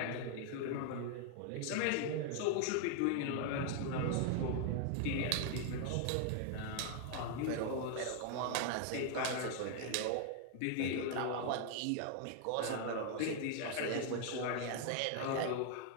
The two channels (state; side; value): different; both; correlation 0.00